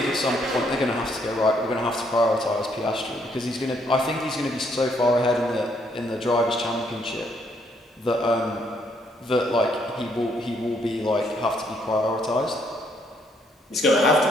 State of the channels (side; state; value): both; normal; correlation 0.71